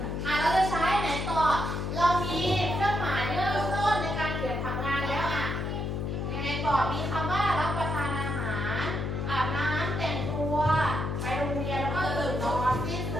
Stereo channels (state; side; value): noise; left; hum, 2 dB below the sound